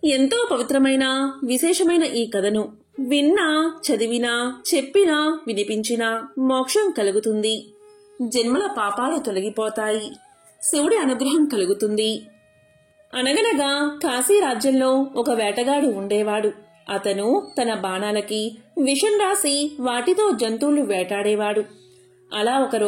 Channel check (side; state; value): both; identical; correlation 1.00